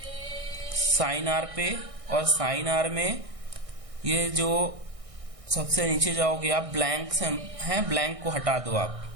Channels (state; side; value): late; left; 1.6 ms